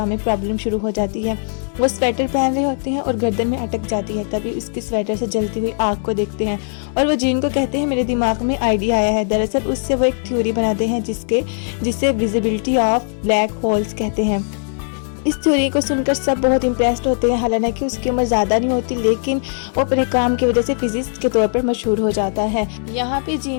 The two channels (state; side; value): silent; right; digital silence